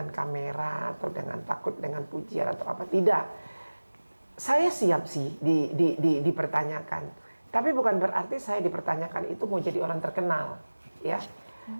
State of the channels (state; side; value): inverted; both; correlation -1.00